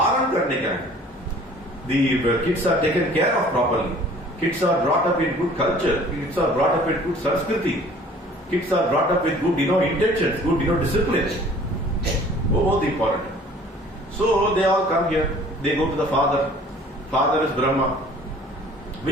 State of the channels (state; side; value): normal; both; correlation 0.51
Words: करने का है. The kids are taken care of properly. Kids are brought up in good culture. Kids are brought up in good Sanskriti. Kids are brought up with good intentions, good discipline. Both important. So they all come here. They go to the father. Father is Brahma.